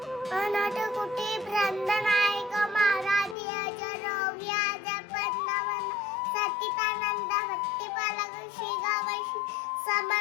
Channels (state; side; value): drops out; right; at 3.4 s